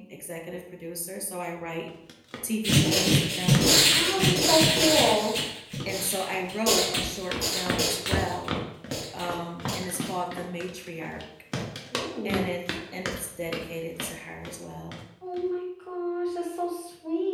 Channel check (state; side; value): identical; both; correlation 1.00